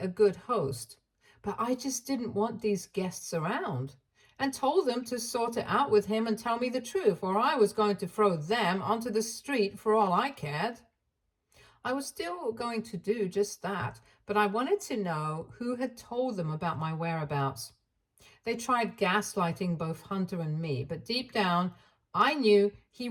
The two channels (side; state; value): both; identical; correlation 1.00